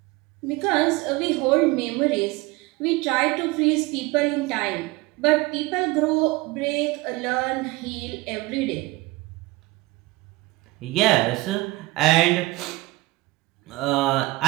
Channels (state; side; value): quieter; left; 21.0 dB